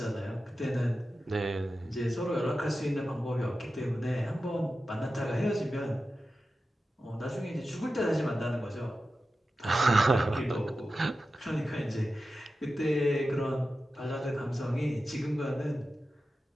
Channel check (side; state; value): both; normal; correlation 0.93